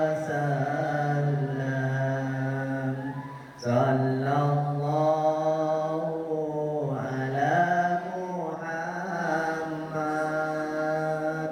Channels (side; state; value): both; identical; correlation 1.00